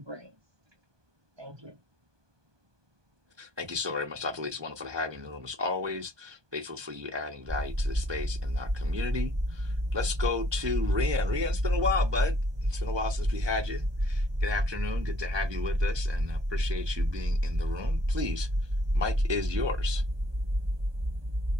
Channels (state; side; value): late; left; 1.2 ms